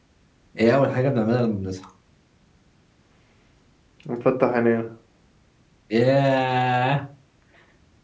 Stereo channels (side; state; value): both; identical; correlation 1.00